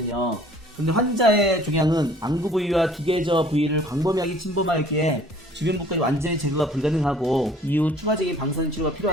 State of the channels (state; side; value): normal; both; correlation 0.53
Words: 근데 환자의 종양은 안구 부위와 기계저 부위를 광범위하게 침범하였기에 주변 부까지 완전히 제거가 불가능하고 이후 추가적인 방사선 치료가